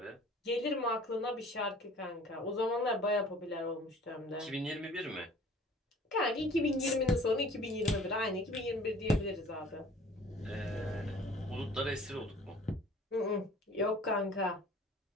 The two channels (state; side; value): normal; both; correlation 0.50